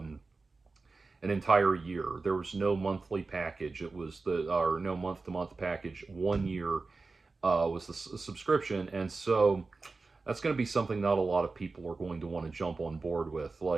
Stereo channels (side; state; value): left; quieter; 3.9 dB